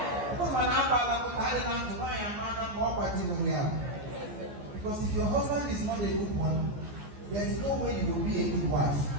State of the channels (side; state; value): left; late; 14 ms